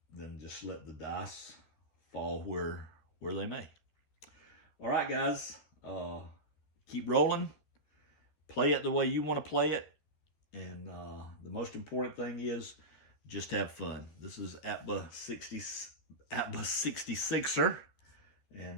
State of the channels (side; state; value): right; late; 13 ms